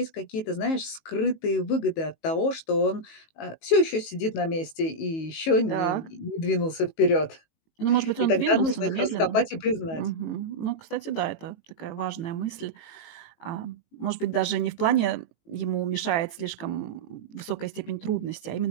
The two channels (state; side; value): late; right; 18 ms